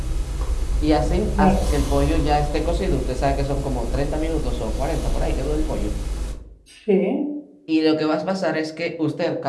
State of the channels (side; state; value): both; identical; correlation 1.00